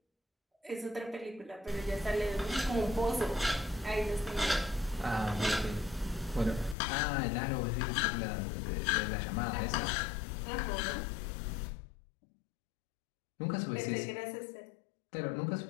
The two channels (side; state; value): right; drops out; at 6.8 s